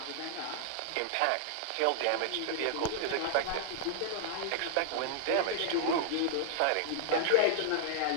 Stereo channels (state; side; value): different; both; correlation -0.01